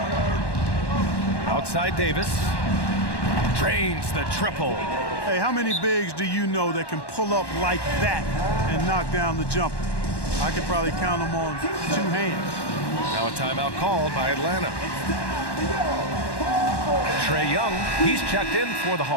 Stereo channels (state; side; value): late; right; 1.1 ms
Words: Outside Davis. Drains the triple. Hey, how many bigs do you know that can pull up like that and knock down the jumper? I could probably count them on 2 hands. Now a timeout called by Atlanta. Trae Young, he's checked in for the